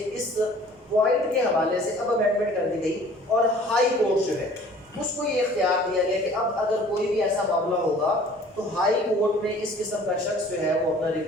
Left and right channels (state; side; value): normal; both; correlation 0.50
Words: اس پوائنٹ کے حوالے سے اب امینڈمنٹ کر دی گئی اور ہائی کورٹ جو ہے اس کو یہ اختیار دیا گیا کہ اب اگر کوئی بھی ایسا معاملہ ہوگا تو ہائی کورٹ میں اس قسم کا شخص جو ہے وہ اپنا